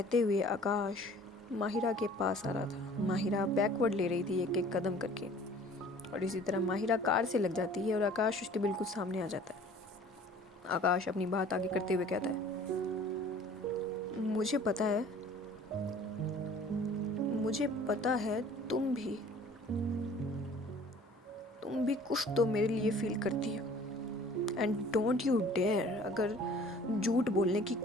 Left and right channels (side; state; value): both; normal; correlation 0.50